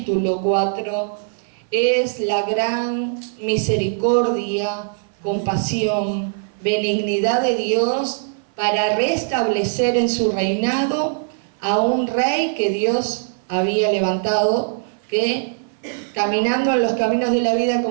4 es la gran misericordia, compasión, benignidad de Dios para restablecer en su reinado a un rey que Dios había levantado, que caminando en los caminos de la vida,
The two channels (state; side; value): silent; left; 57 dB below the other